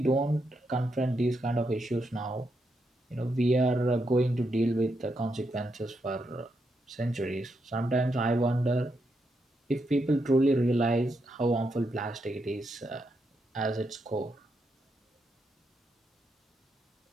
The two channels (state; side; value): normal; both; correlation 0.82